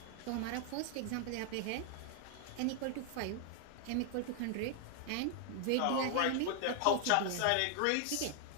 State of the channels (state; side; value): different; both; correlation 0.00